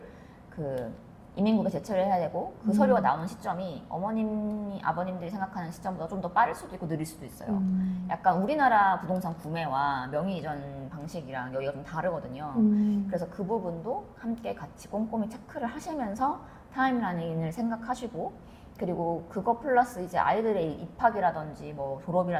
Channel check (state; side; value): identical; both; correlation 1.00